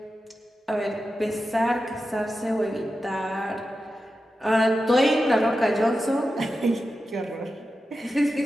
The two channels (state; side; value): normal; both; correlation 0.91